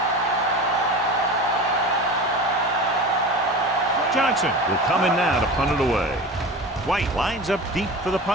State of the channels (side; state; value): both; normal; correlation 0.32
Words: Johnson will come in now to punt it away. White lines up deep for the